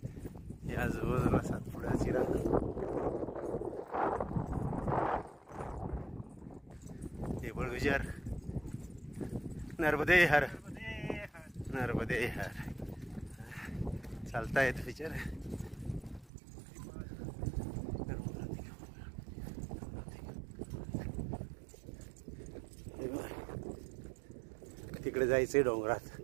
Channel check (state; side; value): drops out; left; at 16.3 s